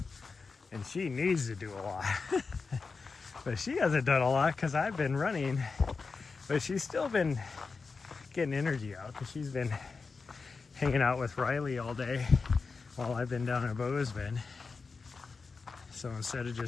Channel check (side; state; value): right; quieter; 4.6 dB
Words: and she needs to do a lot. But she hasn't done a lot because I've been running But she's still been getting energy out because she's been hanging out with Riley all day while I've been down in Bozeman. So instead of